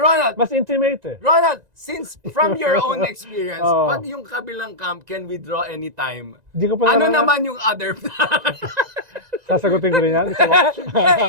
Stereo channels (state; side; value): late; left; 1.9 ms